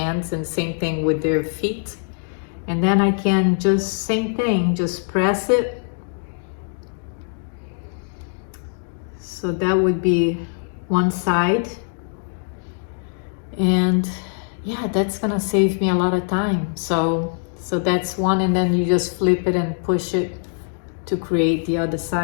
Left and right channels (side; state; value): right; silent; digital silence